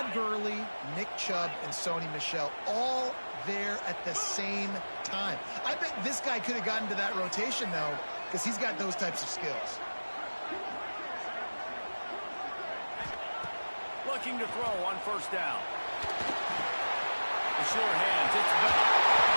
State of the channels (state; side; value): inverted; both; correlation -1.00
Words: Gurley, Nick Chubb, and Sony Michel all there at the same time. I bet this guy could have gotten to that rotation, though, because he's got those types of skills. Looking to throw on first down. The sure hands, it's Bell.